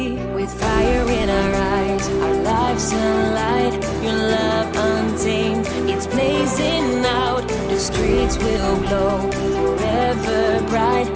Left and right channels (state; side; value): identical; both; correlation 1.00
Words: with fire in our eyes, our lives alight, your love untamed, it's blazing out, the streets will glow,